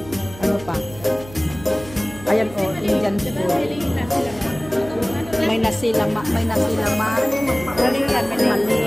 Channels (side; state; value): right; noise; hum, 17 dB below the sound